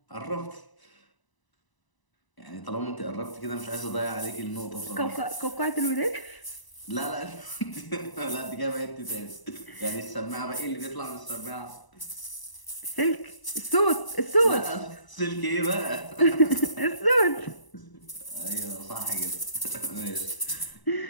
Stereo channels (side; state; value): right; late; 1.0 ms